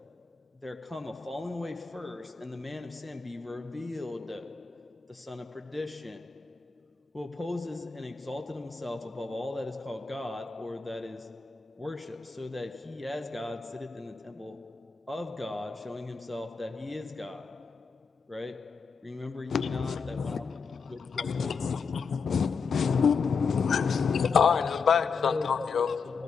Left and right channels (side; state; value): right; quieter; 5.3 dB